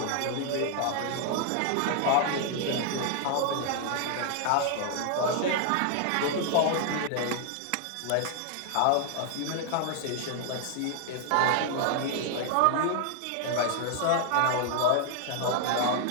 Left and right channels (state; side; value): different; both; correlation 0.00